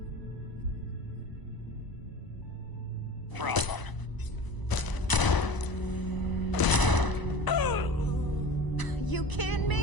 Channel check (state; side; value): late; right; 1.0 ms